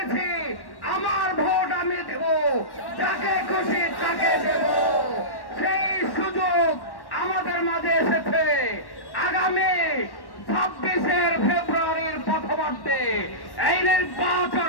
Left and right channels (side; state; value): right; late; 1.1 ms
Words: আমার ভোট আমি দেব, যাকে খুশি তাকে দেব। সেই সুযোগ আমাদের মাঝে এসেছে। আগামী 26 ফেব্রুয়ারির প্রথমার্ধে এই নির্বাচন